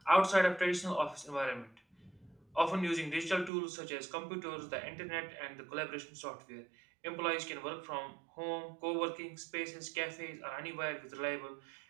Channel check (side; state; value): left; drops out; at 3.5 s